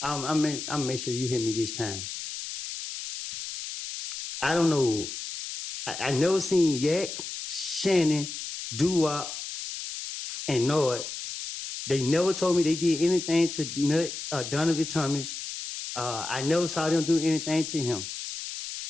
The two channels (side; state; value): left; noise; hiss, 7 dB below the sound